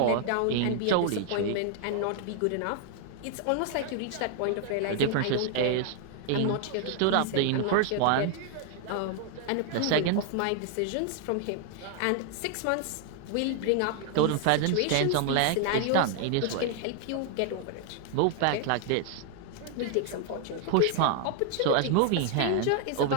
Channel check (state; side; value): different; both; correlation 0.00